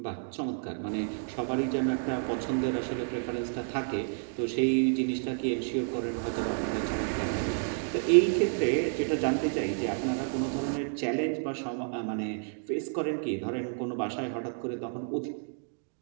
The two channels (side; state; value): left; silent; digital silence